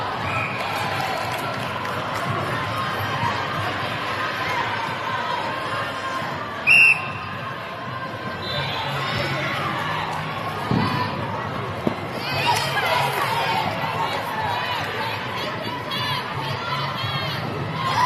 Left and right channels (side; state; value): both; identical; correlation 1.00